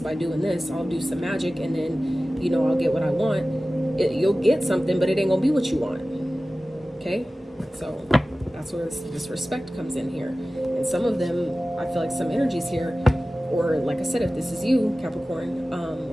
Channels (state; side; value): normal; both; correlation 0.96